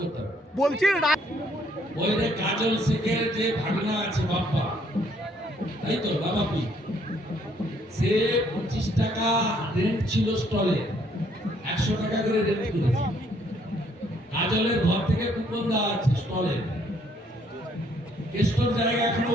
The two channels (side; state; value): both; normal; correlation 0.66